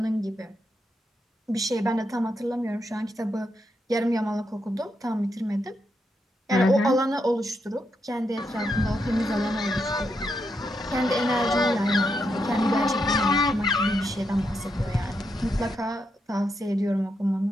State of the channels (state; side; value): normal; both; correlation 0.82